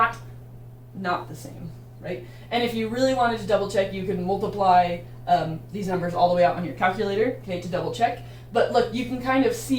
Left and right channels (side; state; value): both; identical; correlation 1.00